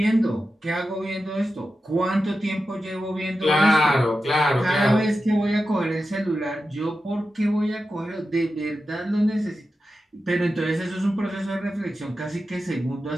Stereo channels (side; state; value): both; normal; correlation 0.91